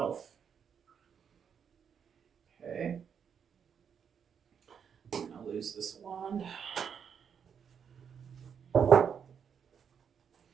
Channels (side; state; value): left; quieter; 7.4 dB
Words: Okay. I'm going to lose this wand. All